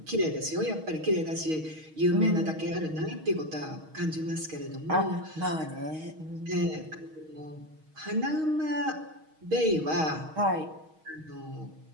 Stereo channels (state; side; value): late; left; 6.4 ms